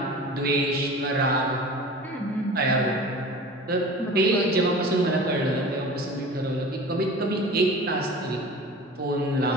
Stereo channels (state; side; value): normal; both; correlation 0.39